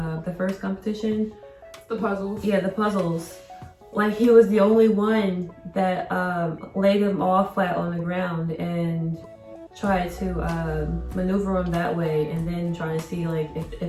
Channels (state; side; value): identical; both; correlation 1.00